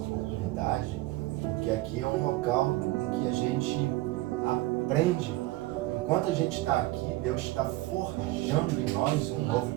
porque aqui é um local em que a gente aprende. Enquanto a gente está aqui, Deus está forjando em nós um novo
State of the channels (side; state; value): left; quieter; 18.9 dB